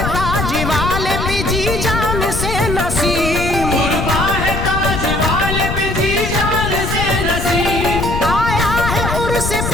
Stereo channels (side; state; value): left; noise; rumble, 3 dB below the sound